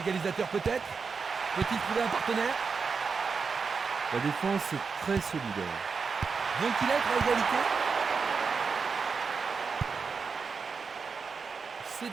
peut-être. Peut-il trouver un partenaire? La défense est très solidaire. Vont-ils être à égalité? C'est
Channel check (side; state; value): left; quieter; 5.2 dB